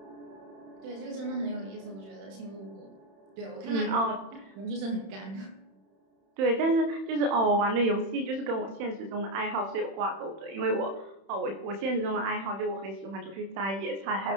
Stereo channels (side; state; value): left; late; 31 ms